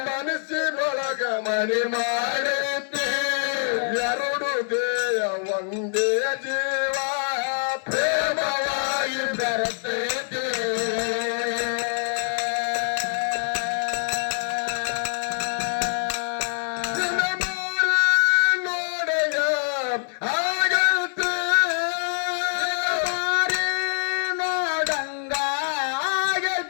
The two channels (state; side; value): silent; right; 60 dB below the other